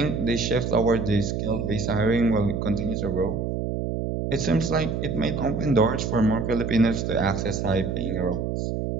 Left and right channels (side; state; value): right; noise; hum, 2 dB below the sound